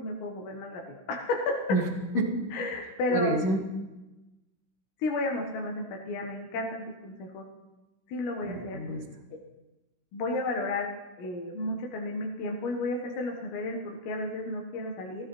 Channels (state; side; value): late; right; 16 ms